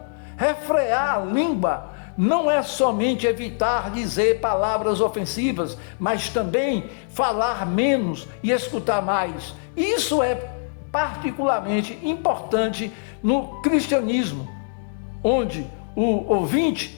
Refrear a língua não é somente evitar dizer palavras ofensivas, mas também falar menos e escutar mais. Isso é particularmente importante no cristianismo, onde o ouvinte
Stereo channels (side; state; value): right; silent; digital silence